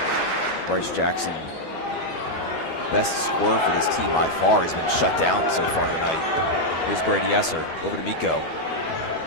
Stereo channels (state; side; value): late; right; 12 ms